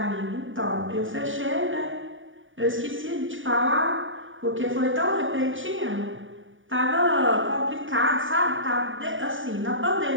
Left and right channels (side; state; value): left; late; 0.57 ms